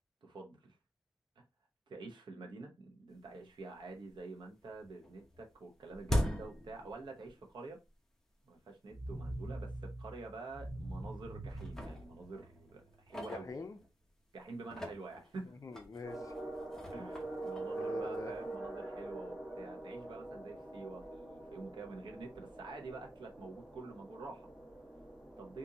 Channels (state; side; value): normal; both; correlation 0.87